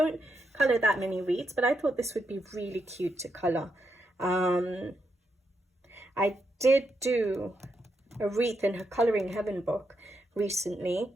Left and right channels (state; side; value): normal; both; correlation 0.82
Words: color that many wreaths, but I thought this would be really cute to color. I did do a wreath in her Coloring Heaven book recently.